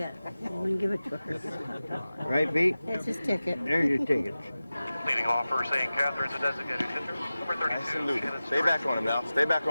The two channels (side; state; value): both; inverted; correlation -0.95